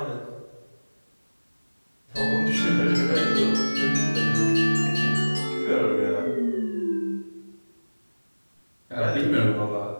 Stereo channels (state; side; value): inverted; both; correlation -1.00